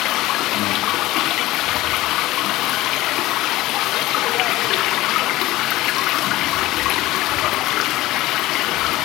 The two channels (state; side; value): quieter; right; 17.4 dB